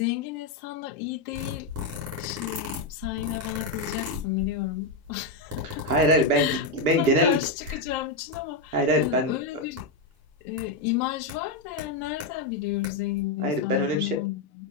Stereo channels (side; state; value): right; quieter; 3.1 dB